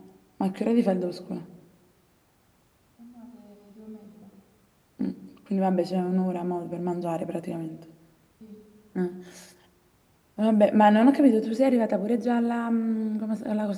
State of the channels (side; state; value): both; identical; correlation 1.00